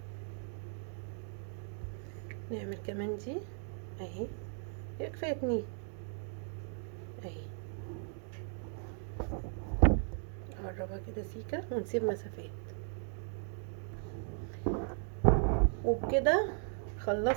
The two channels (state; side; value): silent; left; 53 dB below the other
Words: نعمل كمان دي اهي. هي كفاية اتنين اهي. نقربها كده سيكة ونسيب مسافات. وبكده